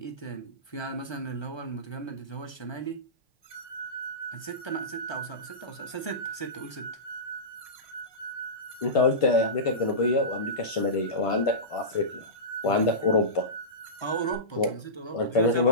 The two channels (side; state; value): right; late; 1.3 ms